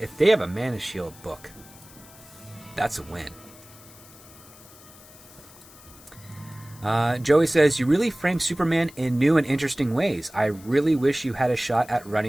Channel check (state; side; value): noise; left; hiss, 22 dB below the sound